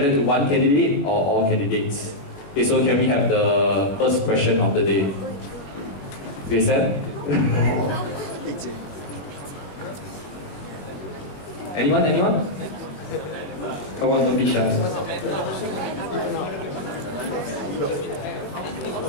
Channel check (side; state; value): right; late; 21 ms